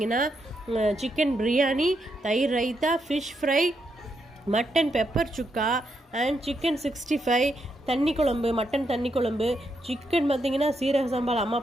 சிக்கன் பிரியாணி, தயிர் raita, fish fry, mutton pepper chukka and chicken 65, தண்ணி குழம்பு, மட்டன் தண்ணி குழம்பு, சிக்கன் பார்த்திங்கன்னா சீரக சம்பால் அம்மா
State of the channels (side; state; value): both; normal; correlation 0.81